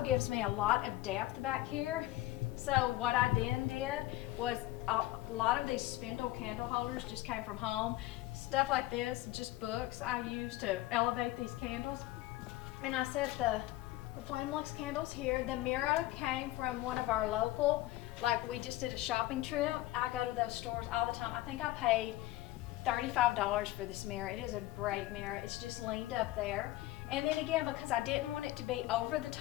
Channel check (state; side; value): quieter; right; 16.7 dB